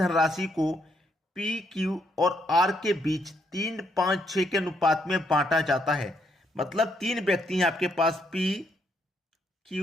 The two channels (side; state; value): both; normal; correlation 0.74